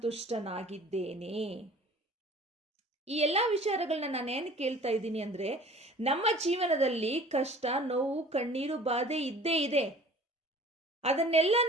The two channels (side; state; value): both; normal; correlation 0.47